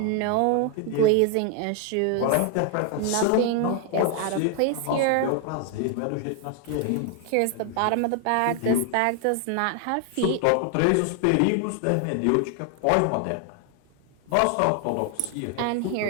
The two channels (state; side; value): different; both; correlation 0.00